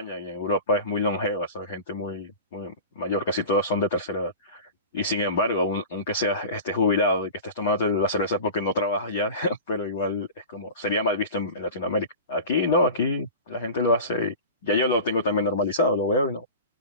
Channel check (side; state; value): both; inverted; correlation -0.33